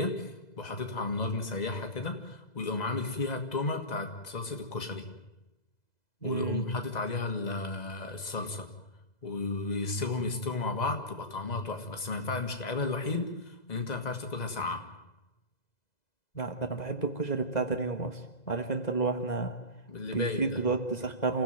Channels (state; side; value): late; right; 2.0 ms